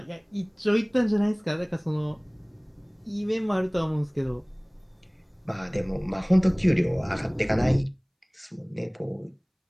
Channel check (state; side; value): identical; both; correlation 1.00